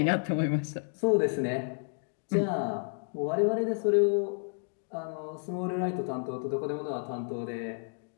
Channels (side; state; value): right; silent; digital silence